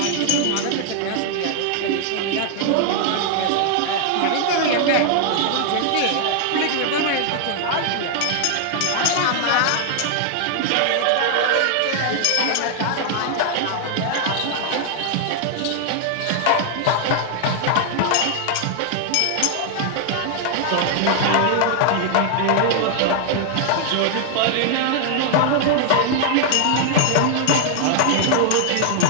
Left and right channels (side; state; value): both; different; correlation 0.00